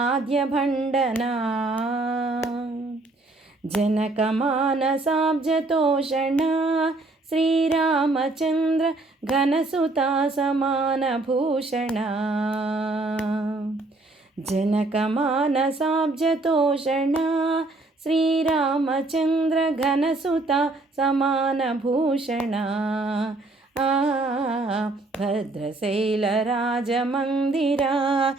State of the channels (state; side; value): quieter; left; 3.0 dB